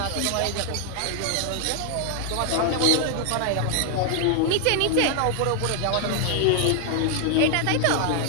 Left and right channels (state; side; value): different; both; correlation 0.00